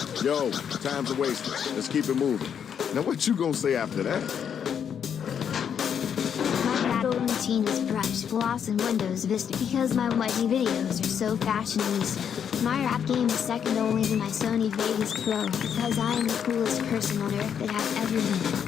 Yo, time's a waste. Let's keep it moving. Now what you gonna say after that? My battle routine is brush, gloss, and Windows Vista because my YG videos are so fashionista. My rap game is second only to my Sony Vegas Pro because I am the coolest person on earth that has ever been.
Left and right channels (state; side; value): quieter; right; 8.0 dB